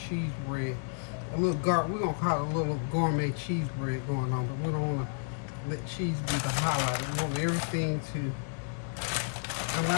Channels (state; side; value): silent; right; 57 dB below the other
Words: bread. We're gonna call it a little gourmet cheese bread going on, but we don't want to let cheese be the highlight. I want everything to, I'm